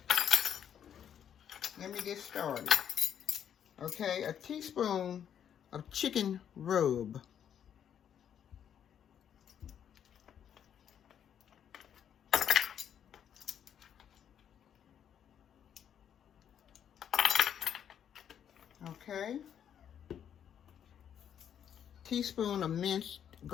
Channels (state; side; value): quieter; right; 9.0 dB